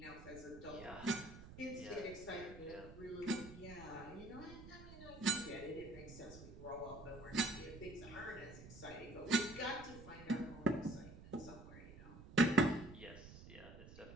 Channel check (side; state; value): right; noise; rumble, 15 dB below the sound